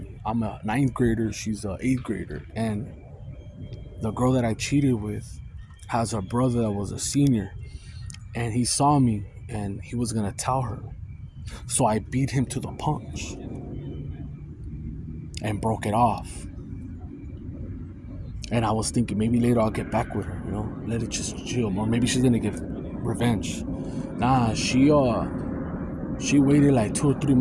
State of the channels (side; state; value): both; identical; correlation 1.00